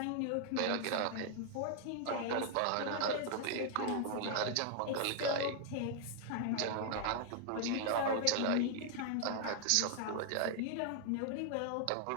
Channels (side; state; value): both; different; correlation 0.00